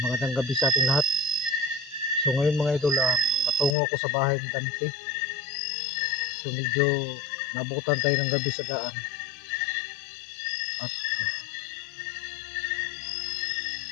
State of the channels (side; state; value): right; drops out; at 3.8 s